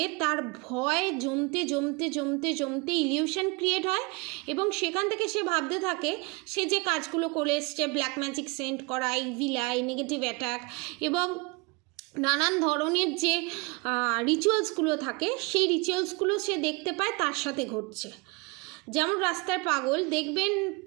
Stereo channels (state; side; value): quieter; left; 28.1 dB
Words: তার ভয় জমতে জমতে জমতে জমতে ইলিউশন ক্রিয়েট হয় এবং সেখান থেকে সে ভাবতে থাকে সে যে কাজগুলো করে এসছে, ব্ল্যাক ম্যাজিক সেন্ড করা, ইভিল আই, নেগেটিভ অ্যাটাক এবং নানান ধরনের যে রিচুয়ালসগুলো থাকে সেই রিচুয়ালসগুলো সে দেখতে পায় তার সাথে ঘটছে। যেমন রাস্তায়